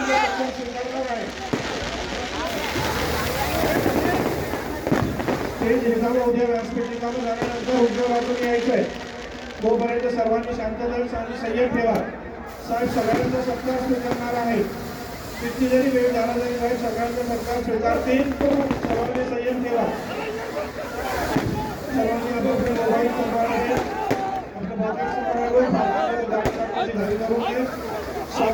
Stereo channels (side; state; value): both; identical; correlation 1.00